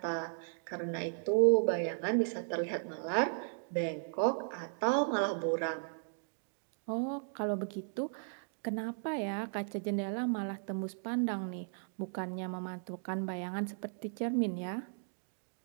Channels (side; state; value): left; silent; digital silence